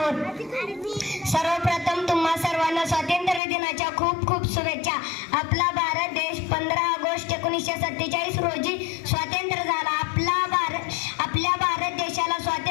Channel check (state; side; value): drops out; right; at 3.4 s